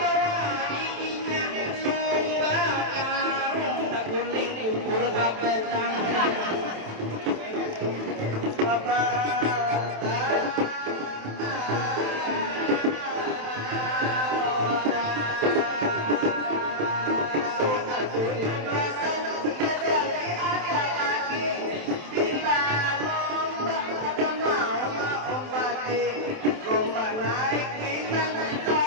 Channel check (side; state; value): left; late; 27 ms